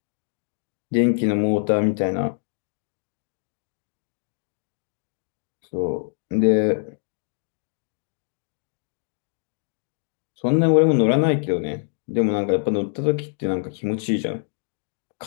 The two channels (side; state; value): right; silent; digital silence